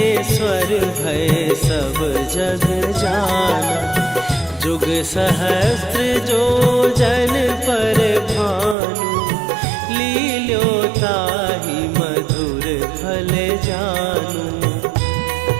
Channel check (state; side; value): drops out; left; at 8.8 s